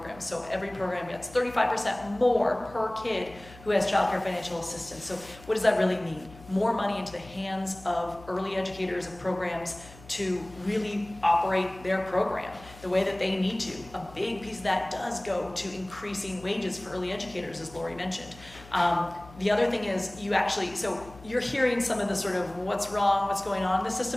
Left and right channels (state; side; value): noise; left; hum, 20 dB below the sound